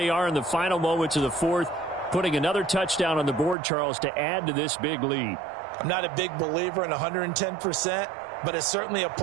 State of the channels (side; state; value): left; drops out; at 3.6 s